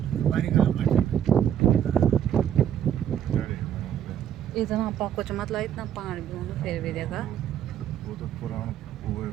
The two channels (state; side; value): quieter; left; 9.9 dB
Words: इतना कुछ मतलब इतना पानी भी होना फिर भी देखा वो तो पुराना वो है,